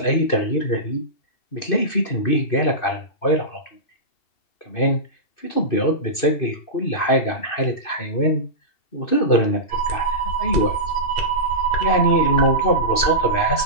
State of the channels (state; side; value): late; right; 2.5 ms